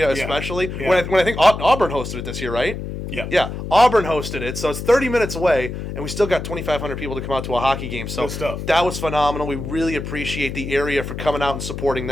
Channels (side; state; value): left; noise; hum, 7 dB below the sound